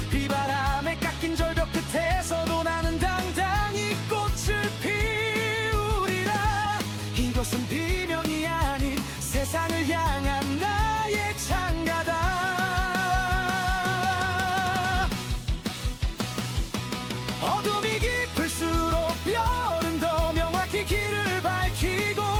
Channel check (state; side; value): identical; both; correlation 1.00